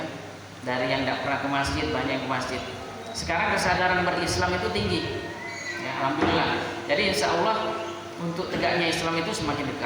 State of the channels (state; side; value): identical; both; correlation 1.00